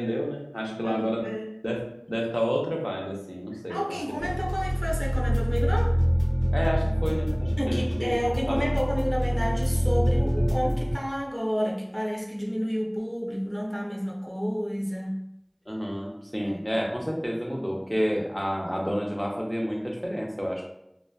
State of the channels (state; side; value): identical; both; correlation 1.00